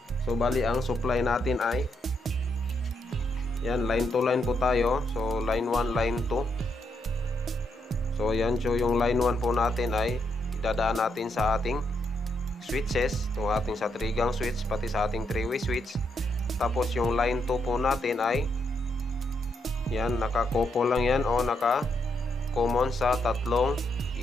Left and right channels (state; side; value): normal; both; correlation 0.78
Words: So bali ang supply natin ay yan, line to line po tayo. So line 1, line 2. So yan, so yung line 1 po natin ay idadaan natin sa ating switches, itong ating sa 3-gang switch, pati sa ating 3-way switch. Tapos yung line 2 po natin ay yan, naka-couple lang yan o naka-common sa tatlong